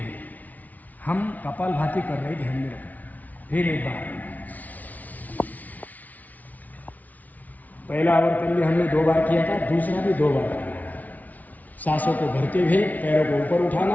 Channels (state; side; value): late; right; 0.076 ms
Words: हम कपालभाति कर रहे, ध्यान में रखना। फिर एक बार, पहला आवर्तन भी हमने 2 बार किया था, दूसरा भी 2 बार करना है। सांसों को भरते हुए पैरों को ऊपर